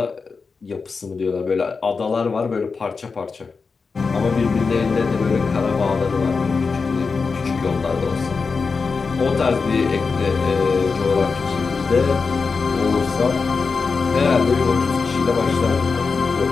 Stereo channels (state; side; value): quieter; right; 4.8 dB